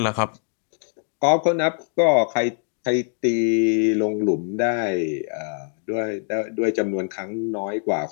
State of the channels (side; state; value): right; silent; 55 dB below the other